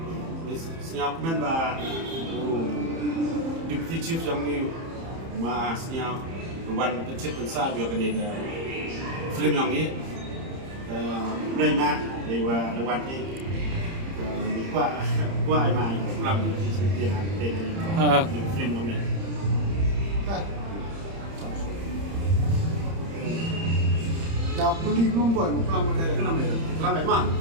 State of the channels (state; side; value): late; left; 30 ms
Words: siap men ba. Deputy Chief yang ni masnya wan pencet pensar dia kena film yang ni. Boleh mah, dewa dewan ni. Qua ai mai làm tiền hàng tiền film yang ni. Dah beli membuat kelam ada Kenapa itu? Kenapa emang?